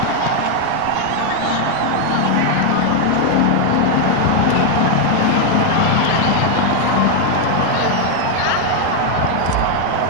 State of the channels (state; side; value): different; both; correlation 0.01